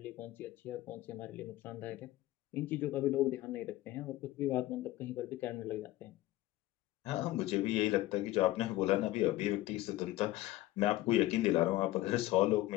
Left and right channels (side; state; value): right; quieter; 16.7 dB